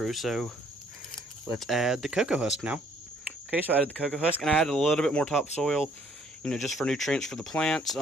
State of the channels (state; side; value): normal; both; correlation 0.63